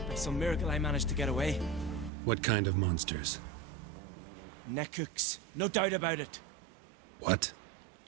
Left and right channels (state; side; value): drops out; left; at 2.1 s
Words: By some miracle I managed to get away. What kind of monsters? Nekooks, no doubt about it. What?